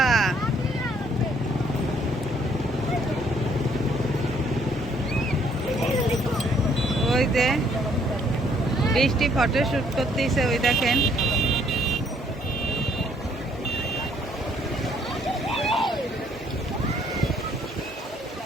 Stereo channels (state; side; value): normal; both; correlation 0.65